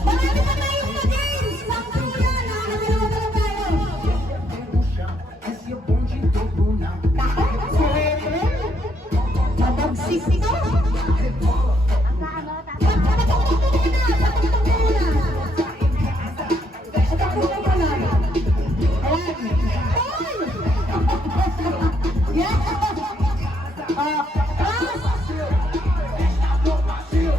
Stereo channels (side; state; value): both; normal; correlation 0.73